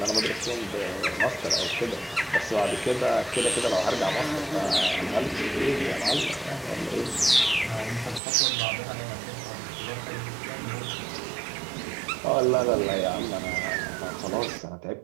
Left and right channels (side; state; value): left; drops out; at 8.2 s